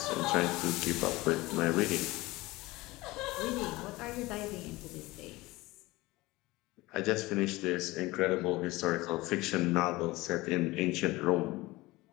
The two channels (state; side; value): quieter; right; 20.4 dB